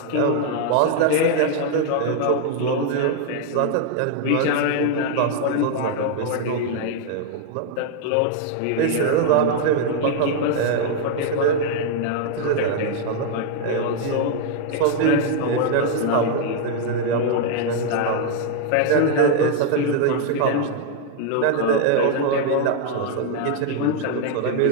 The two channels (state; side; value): different; both; correlation 0.00